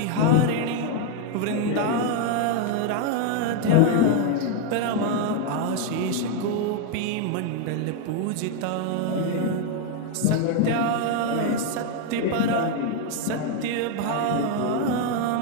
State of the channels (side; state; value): both; different; correlation 0.01